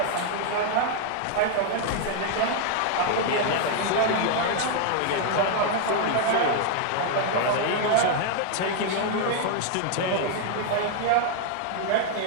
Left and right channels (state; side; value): different; both; correlation 0.00